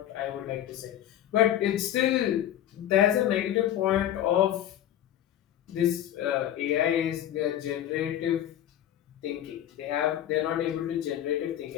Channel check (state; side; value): quieter; right; 11.5 dB